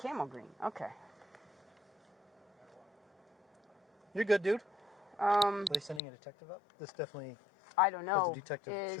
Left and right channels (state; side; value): drops out; right; at 6.0 s